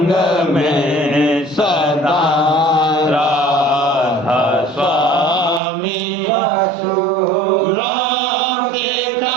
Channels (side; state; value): left; drops out; at 5.6 s